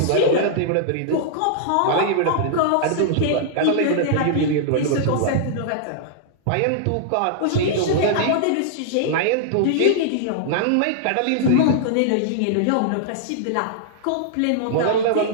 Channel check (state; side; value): different; both; correlation -0.01